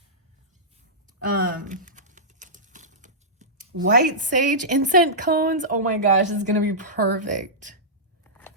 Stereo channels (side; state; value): both; normal; correlation -0.15